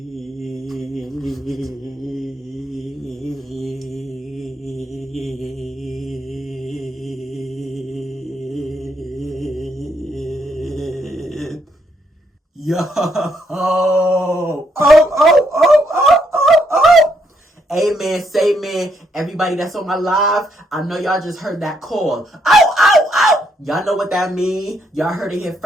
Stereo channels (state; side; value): normal; both; correlation 0.75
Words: Yo! Oh! Amen, say man. Everybody that's on my live, I know y'all just heard that call. Oh! Y'all know what that mean. Y'all heard it here